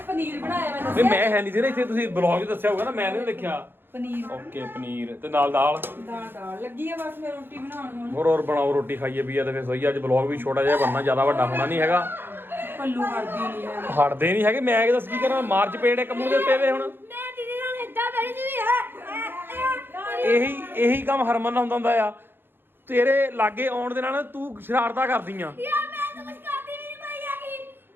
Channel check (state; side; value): late; left; 0.10 ms